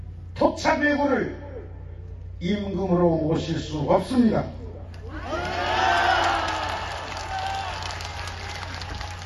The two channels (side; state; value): both; identical; correlation 1.00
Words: 토착외구를 임금으로 모실 수 없습니다.